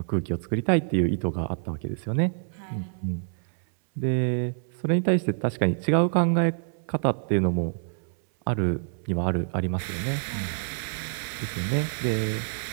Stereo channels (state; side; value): silent; left; 60 dB below the other